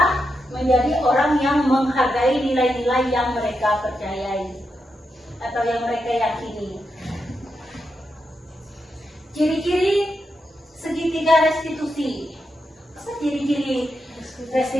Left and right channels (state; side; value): normal; both; correlation 0.85